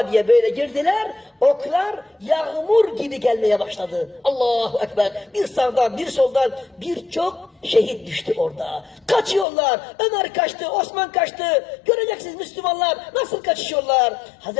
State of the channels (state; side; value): drops out; right; at 9.5 s